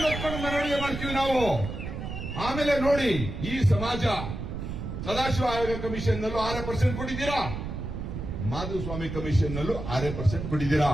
ಒತ್ಕೊಂಡು ಮೆರವಣಿಗೆ ಮಾಡ್ತೀವಿ ನಾವು. ಆಮೇಲೆ ನೋಡಿ, ಈ ಸಮಾಜ ಸದಾಶಿವ ಆಯೋಗ ಕಮಿಷನ್ ನಲ್ಲೂ 6% ಕೊಟ್ಟಿದ್ದೀರಾ, ಮಾಧುಸ್ವಾಮಿ ಕಮಿಷನ್ ನಲ್ಲೂ 6% ಕೊಟ್ಟಿದ್ದೀರಾ.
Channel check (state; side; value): noise; right; rumble, 6 dB below the sound